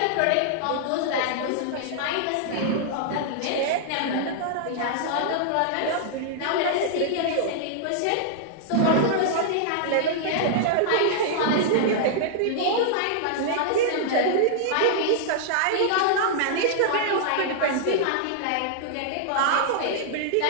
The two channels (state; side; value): different; both; correlation -0.01